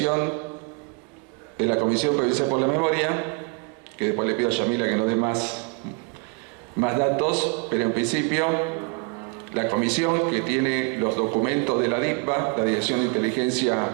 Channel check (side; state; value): left; quieter; 33.6 dB